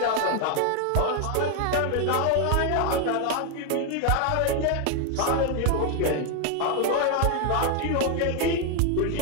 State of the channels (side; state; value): both; different; correlation 0.01